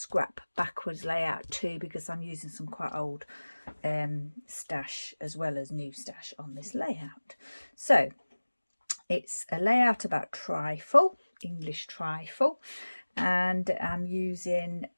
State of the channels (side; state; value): both; inverted; correlation -1.00